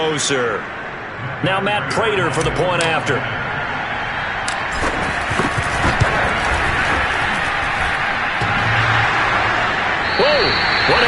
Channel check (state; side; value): identical; both; correlation 1.00